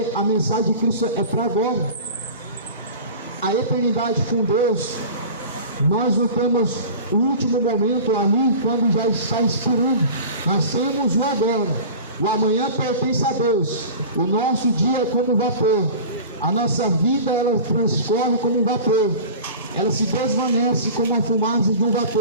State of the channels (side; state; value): both; inverted; correlation -0.37